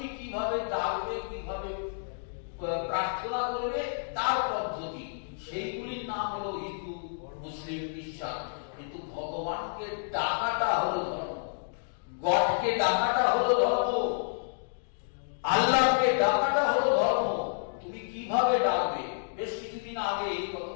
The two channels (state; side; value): silent; right; digital silence